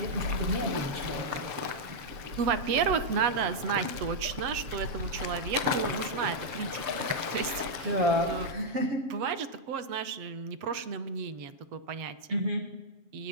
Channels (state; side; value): late; left; 7.4 ms